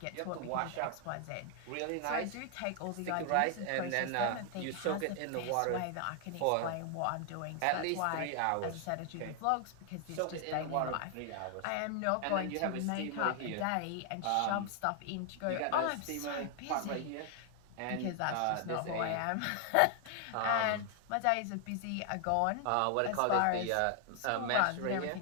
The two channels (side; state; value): both; different; correlation 0.00